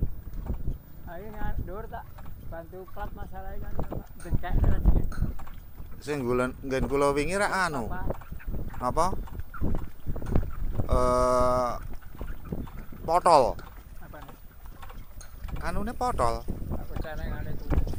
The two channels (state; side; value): identical; both; correlation 1.00